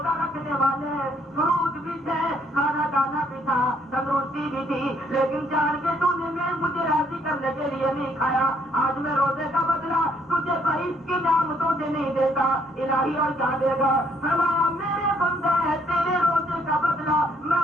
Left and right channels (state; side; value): normal; both; correlation 0.68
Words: رکھنے والے, فروٹ بھی تھے, کھانا دانا بھی تھا, تندرستی بھی تھی, لیکن جان کے تو نے مجھے راضی کرنے کے لیے نہیں کھایا. آج میں روزے کا بدلہ تجھے بہشت کی نعمتوں سے نہیں دیتا, الہی اور کیا دے گا فرمایا میرے بندے ہے تیرے روزے کا بدلہ میں